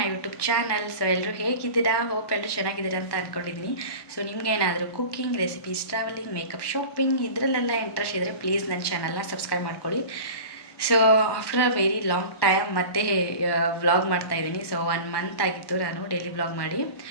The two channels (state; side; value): late; right; 1.2 ms